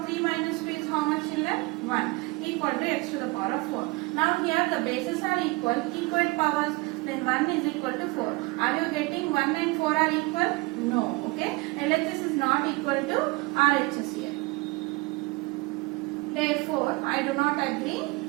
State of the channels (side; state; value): left; quieter; 24.4 dB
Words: 3 minus 2 is how much, children? 1 equal to x to the power of 4. Now here the bases are equal, equal powers, then 1 is equal to 4. Are you getting 1 and 4 are equal? No. Okay. LHS is not equal to RHS here. Therefore, I do not agree